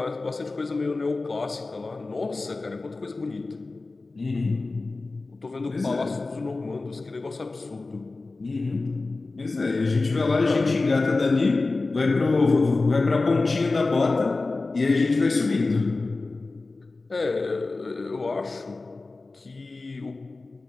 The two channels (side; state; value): right; quieter; 3.5 dB